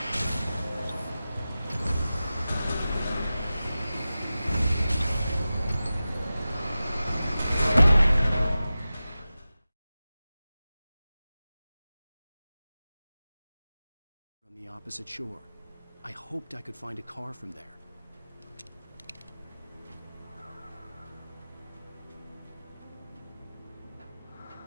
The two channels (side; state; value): both; inverted; correlation -0.95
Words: On the opposite shore. I hoped I could find a car from there.